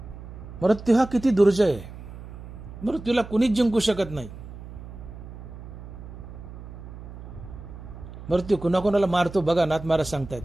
मृत्यू हा किती दुर्जय आहे, मृत्यूला कुणीच जिंकू शकत नाही. मृत्यू कुणाकुणाला मारतो बघा, नाथ महाराज सांगतायत.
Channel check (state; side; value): noise; right; hum, 13 dB below the sound